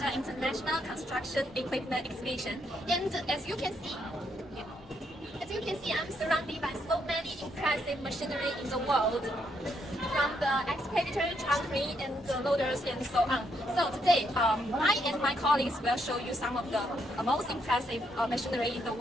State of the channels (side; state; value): both; normal; correlation 0.76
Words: International Construction Equipment Exhibition. And as you can see, I'm surrounded by so many impressive machinery in the world, from the excavator, truck crane, and the loaders, and so on. So today, I and my colleagues will show you some of the most impressive machinery in the